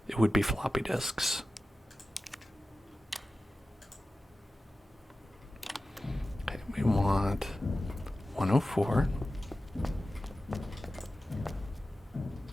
it would be floppy disks. Okay, we want 104.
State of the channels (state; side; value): normal; both; correlation 0.94